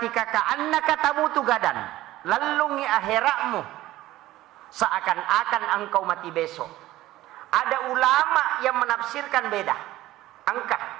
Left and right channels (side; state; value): left; quieter; 15.9 dB